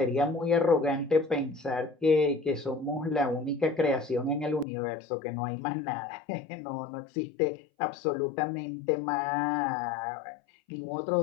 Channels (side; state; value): right; drops out; at 4.7 s